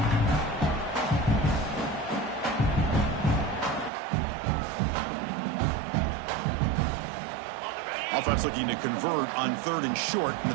Offense looking to convert on 3rd and short from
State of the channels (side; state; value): left; drops out; at 3.9 s